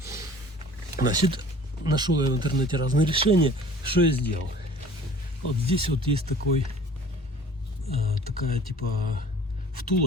Значит, нашел я в интернете разные решения. Что я сделал? Вот здесь вот есть такая типа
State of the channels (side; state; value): both; normal; correlation 0.48